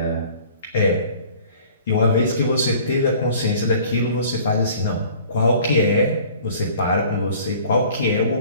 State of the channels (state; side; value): inverted; both; correlation -0.50